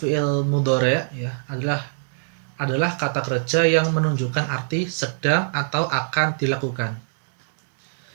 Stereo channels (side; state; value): left; silent; digital silence